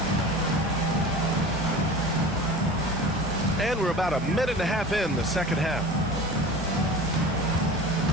And we're about a minute and a half in the second half.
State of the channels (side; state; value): both; normal; correlation 0.37